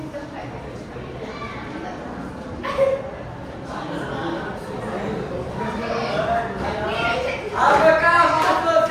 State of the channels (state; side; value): identical; both; correlation 1.00